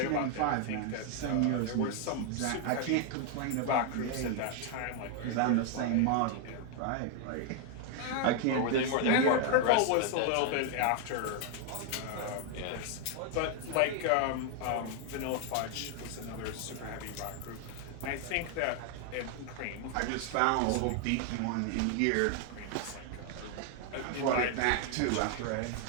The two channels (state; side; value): different; both; correlation 0.00